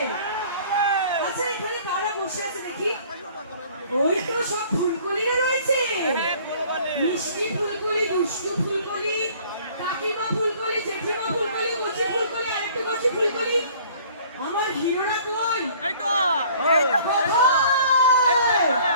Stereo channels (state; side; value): inverted; both; correlation -0.53